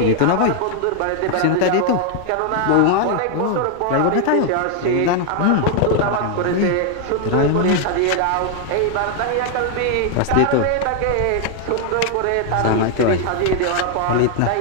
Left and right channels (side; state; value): both; different; correlation 0.00